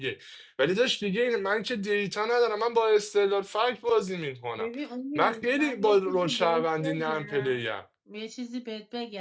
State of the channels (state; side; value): identical; both; correlation 1.00